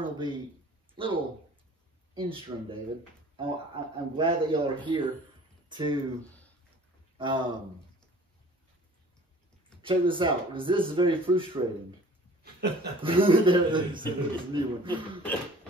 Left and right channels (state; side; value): normal; both; correlation 0.48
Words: will be a little interesting, David. I'm glad that y'all are here to check this out, because this is very frustrating. There's a new one.